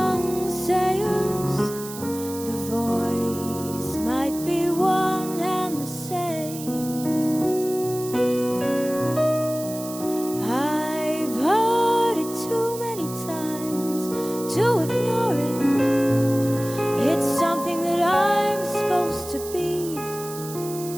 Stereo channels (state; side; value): noise; right; hiss, 12 dB below the sound